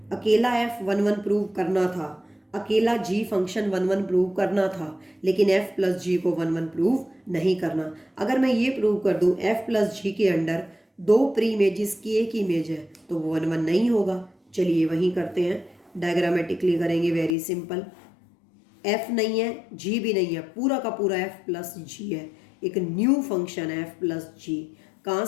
अकेला f 1 1 प्रूव करना था, अकेला g फंक्शन 1 1 प्रूव करना था, लेकिन f प्लस जी को 1 1 प्रूव नहीं करना। अगर मैं ये प्रूव कर दूं f प्लस जी के अंडर दो प्री इमेजेस की एक इमेज है, तो वो 1 1 नहीं होगा। चलिए वहीं करते हैं, डायग्रामेटिकली करेंगे, वेरी सिंपल। f नहीं है, g भी नहीं है, पूरा का पूरा f प्लस जी है। एक न्यू फंक्शन है f प्लस जी, कहाँ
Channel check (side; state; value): right; drops out; at 17.4 s